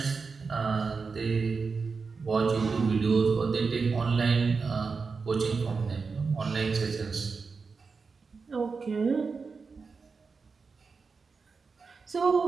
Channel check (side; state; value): left; quieter; 4.8 dB